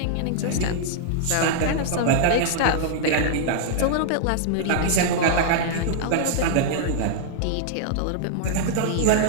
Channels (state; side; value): different; both; correlation -0.01